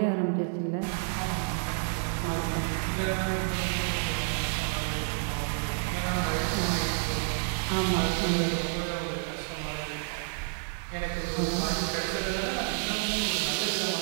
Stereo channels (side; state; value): left; silent; 58 dB below the other